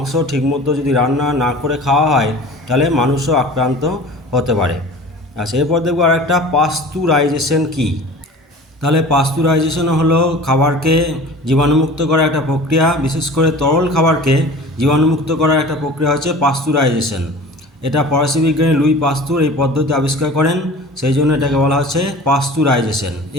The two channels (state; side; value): normal; both; correlation 0.40